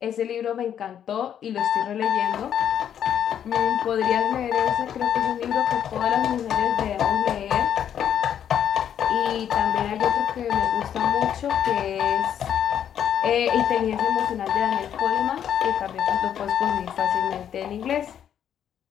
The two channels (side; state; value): right; quieter; 9.4 dB